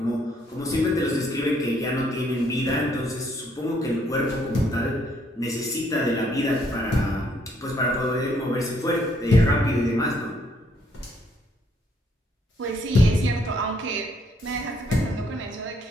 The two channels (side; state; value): both; normal; correlation 0.69